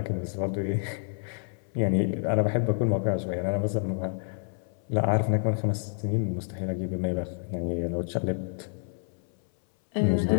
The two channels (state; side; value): silent; right; 59 dB below the other